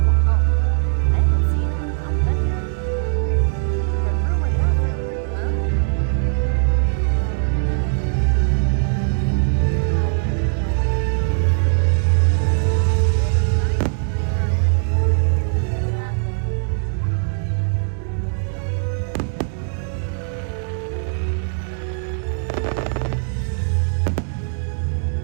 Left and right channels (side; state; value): left; silent; 65 dB below the other